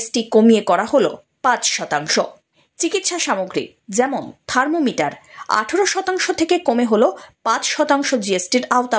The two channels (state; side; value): identical; both; correlation 1.00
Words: কমিয়ে করা হলো 5%। চিকিৎসা সামগ্রী যেমন থার্মোমিটার 18% থেকে কমে হলো 5% জিএসটির